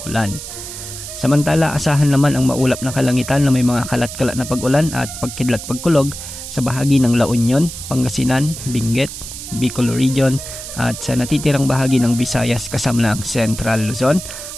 ulan. Samantala, asahan naman ang maulap na kalangitan na may mga kalat-kalat na pag-ulan at pagkidlat-pagkulog sa bahagi ng La Union, Pangasinan, Benguet, Bicol Region at sa natitirang bahagi ng Visayas kasama ng Central Luzon,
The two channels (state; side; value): noise; right; hiss, 10 dB below the sound